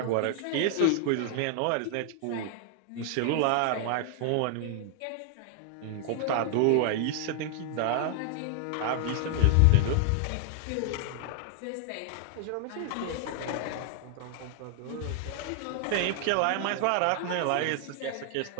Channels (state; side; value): different; both; correlation 0.00